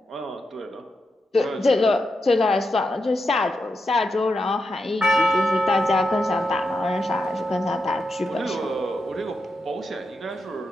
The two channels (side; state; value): both; normal; correlation 0.86